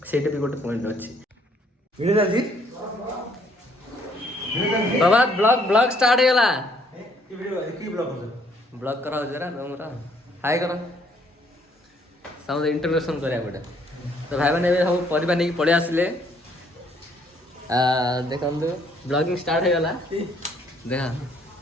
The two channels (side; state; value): both; normal; correlation 0.66